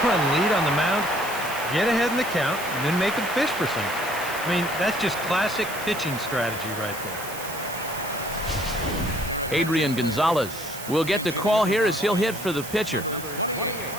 lead on the mound, get ahead in the count and then make them fish for something. I mean, that's just classic pitching strategy right there. Adrian Gonzalez will get the call here as he'll hit for the pitcher. Number 28,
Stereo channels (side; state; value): right; noise; hiss, 11 dB below the sound